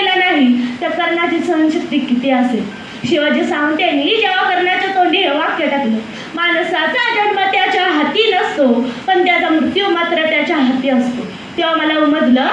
नाही, त्या कर्णाची सहनशक्ती किती असेल. शिवाजी सावंत यांनी जेव्हा कर्णाच्या तोंडी हे वाक्य टाकलं, माणसाचा जन्म त्याच्या हाती नसतो पण त्याचा मृत्यू मात्र त्याच्या हाती असतो, तेव्हा मला उमजलं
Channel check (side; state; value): both; identical; correlation 1.00